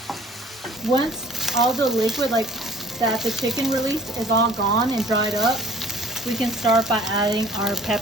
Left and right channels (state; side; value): normal; both; correlation 0.53